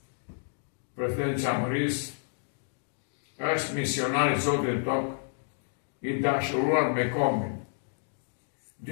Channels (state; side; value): silent; right; digital silence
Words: Presidenti Çamërisë është misionar i Zotit tokë, i dashuruar me kombin.